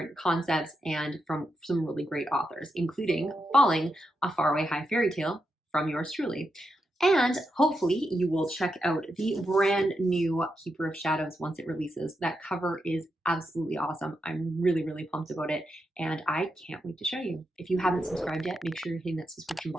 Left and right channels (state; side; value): normal; both; correlation 0.85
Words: concepts and from some really great authors, including Falling, A Faraway High Fairy Tale from yours truly. And hopefully you will check out the brand new Keeper of Shadows once it releases. That cover is absolutely awesome. I'm really, really pumped about it, and I can't wait to show you. If you haven't subscribed yet, make sure you're hitting that subscription